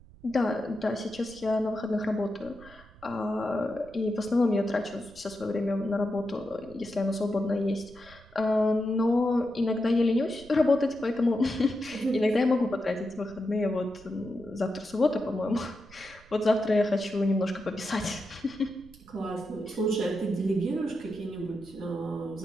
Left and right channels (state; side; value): noise; right; rumble, 23 dB below the sound